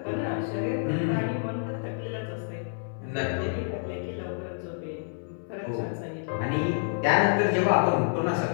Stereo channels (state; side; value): silent; right; 59 dB below the other